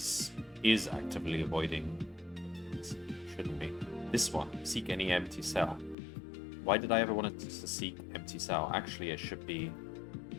actively avoiding... Shouldn't be. This one, seek any empty cell. Why did I ever want it to seek empty cell? Actually, it should be...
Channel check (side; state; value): right; drops out; at 6.0 s